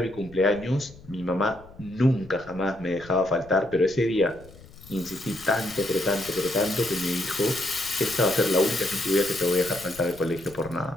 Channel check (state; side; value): noise; left; rumble, 21 dB below the sound